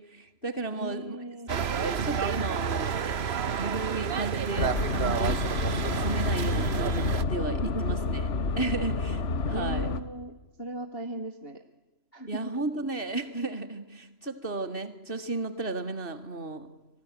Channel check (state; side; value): late; right; 3.0 ms